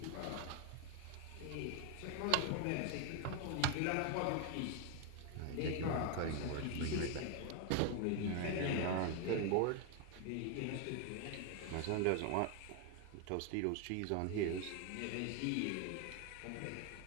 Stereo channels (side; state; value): both; different; correlation 0.01